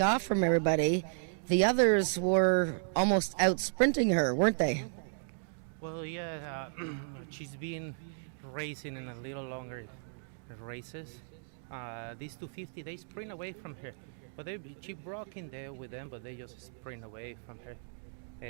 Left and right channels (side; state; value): left; silent; digital silence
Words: from everybody. The others were almost out sprinting her, weren't they? Well, yeah, she's been racing in a little longer races. These 250, they sprint away from her. But she broke in there with them, but they just sprint away from her.